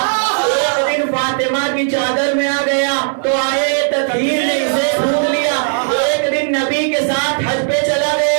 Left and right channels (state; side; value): silent; left; digital silence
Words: ایک دن فاطمہ کی چادر میں آ گیا تو آئے تطہیر نے اسے ڈھونڈ لیا، ایک دن نبی کے ساتھ حج پہ چلا